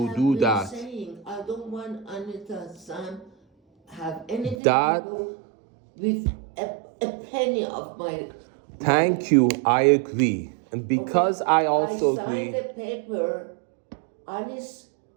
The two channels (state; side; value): drops out; left; at 4.5 s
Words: have do been that. saying, I don't want Anita Sam have anything That- to do with a penny of my. Thank you, I agree. And because I also I agree, signed a paper, Alice,